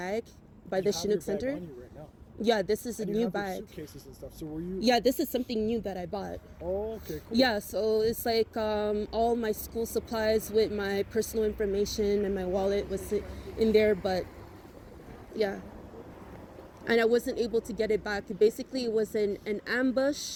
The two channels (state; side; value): identical; both; correlation 1.00